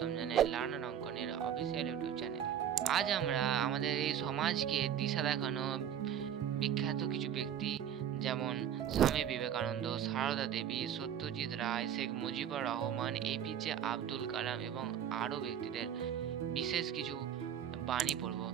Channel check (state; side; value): quieter; left; 9.4 dB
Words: জানাই লার্নার অঙ্কনের অফিসিয়াল ইউটিউব চ্যানেলে। আজ আমরা আমাদের এই সমাজকে দিশা দেখানো বিখ্যাত কিছু ব্যক্তি যেমন স্বামী বিবেকানন্দ, সারদা দেবী, সত্যজিৎ রায়, শেখ মুজিবুর রহমান, এপিজে আব্দুল কালাম এবং আরও ব্যক্তিদের বিশেষ কিছু বাণী পড়ব।